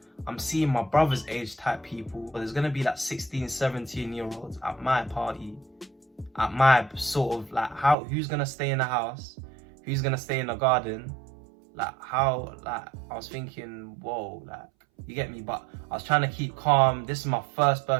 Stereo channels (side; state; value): left; drops out; at 8.0 s